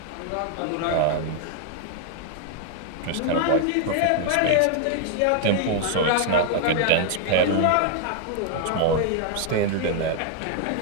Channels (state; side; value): different; both; correlation 0.00